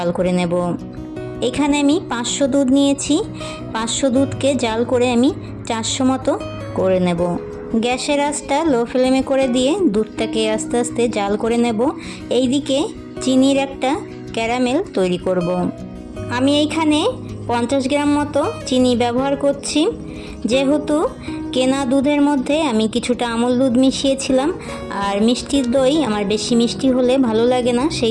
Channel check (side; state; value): both; identical; correlation 1.00